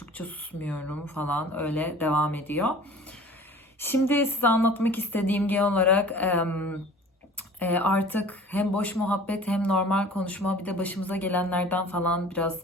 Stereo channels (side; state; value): both; normal; correlation 0.45